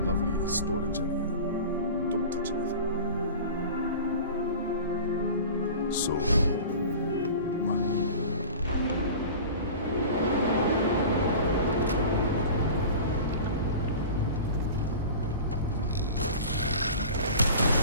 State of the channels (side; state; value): both; inverted; correlation -0.37